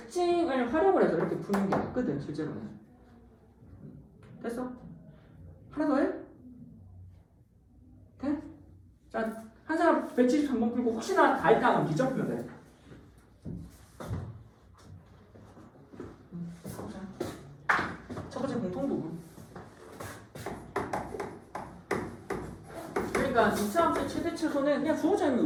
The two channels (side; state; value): both; identical; correlation 1.00